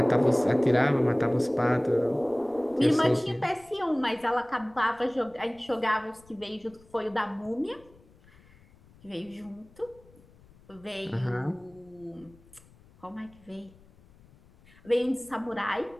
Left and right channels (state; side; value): noise; left; rumble, 27 dB below the sound